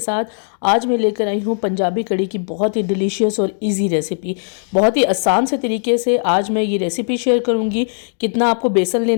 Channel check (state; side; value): silent; right; digital silence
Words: आज मैं लेकर आई हूँ पंजाबी कड़ी की बहुत ही डिलीशियस और इजी रेसिपी। बहुत ही आसान से तरीके से आज मैं ये रेसिपी शेयर करूँगी। कितना आपको बेसन